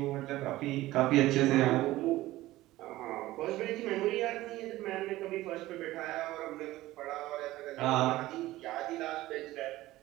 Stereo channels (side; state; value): left; quieter; 16.8 dB